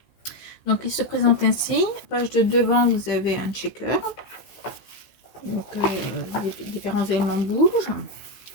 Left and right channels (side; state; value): right; late; 15 ms